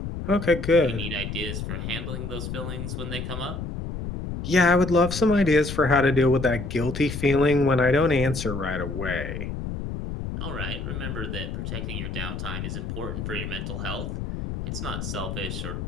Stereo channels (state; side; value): noise; left; rumble, 5 dB below the sound